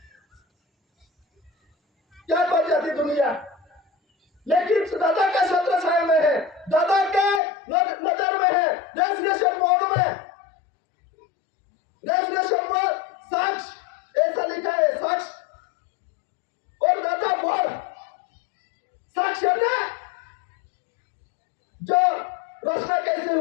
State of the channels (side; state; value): right; drops out; at 7.4 s